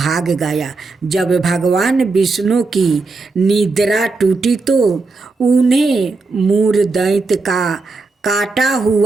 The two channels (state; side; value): quieter; left; 3.8 dB